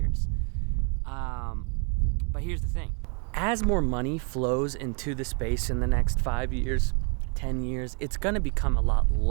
But here's the thing. As more money flows into the space in the next 5 years, 10 years, it's gonna become a lot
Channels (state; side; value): quieter; left; 38.6 dB